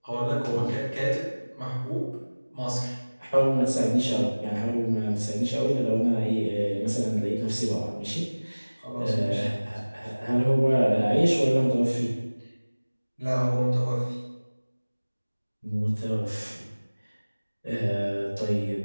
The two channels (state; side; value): inverted; both; correlation -1.00